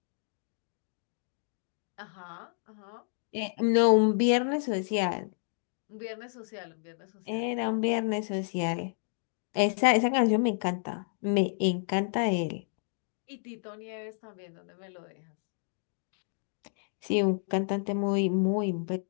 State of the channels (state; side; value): silent; right; digital silence